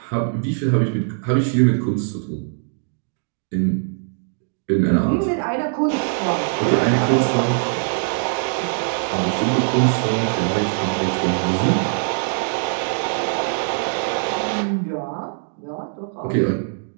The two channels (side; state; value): left; silent; 64 dB below the other